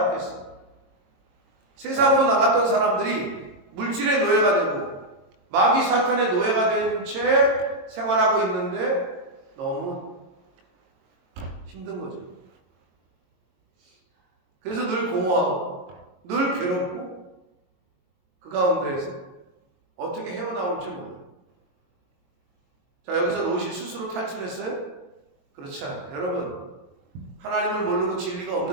세상으로 나갔던 사람들이 물질의 노예가 되고 마귀 사탄의 노예가 된 채 생활하고 있는데 너무 힘든 거죠. 그래서 늘 공허하고 늘 괴롭고 그 가운데에서 어떻게 헤어나올지 몰라요. 자, 여기서 롯이 스스로 탈출했어요? 그렇지 않아요. 여러분, 하나님을 모르고 진리가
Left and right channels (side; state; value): left; late; 22 ms